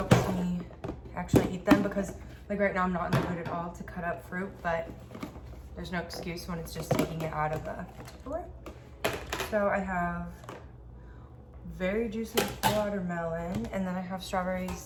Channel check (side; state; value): both; identical; correlation 1.00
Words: me actually eat them, because like right now I'm not in the mood at all to cut up fruit, but there's no excuse when it's just taking it out of the Tupperware. So I have very juicy watermelon, and then I have